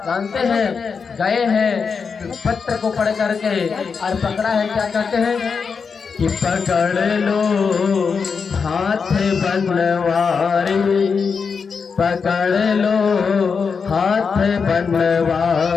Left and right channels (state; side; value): quieter; right; 5.6 dB